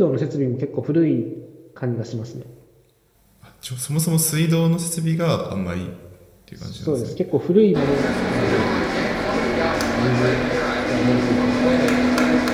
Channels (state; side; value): identical; both; correlation 1.00